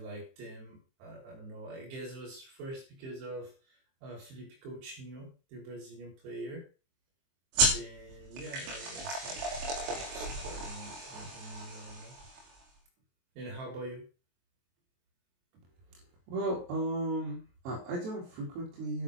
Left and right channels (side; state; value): left; late; 23 ms